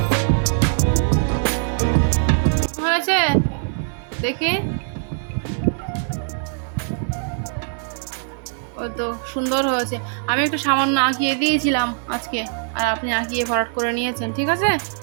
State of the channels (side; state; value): left; silent; digital silence